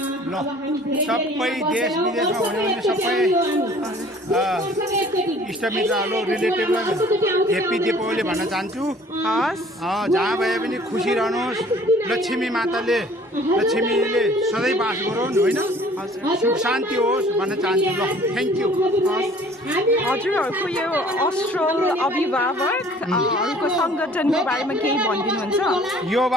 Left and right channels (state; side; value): normal; both; correlation 0.52